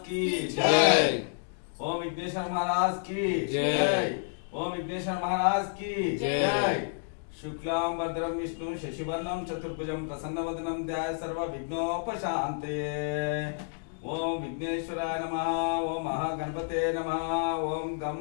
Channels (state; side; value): silent; right; digital silence